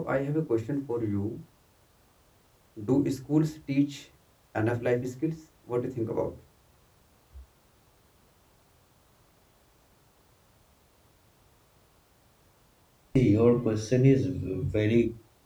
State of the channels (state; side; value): identical; both; correlation 1.00